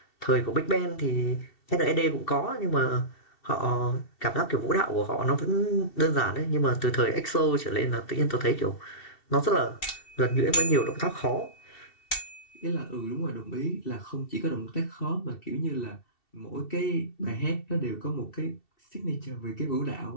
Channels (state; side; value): late; right; 2.7 ms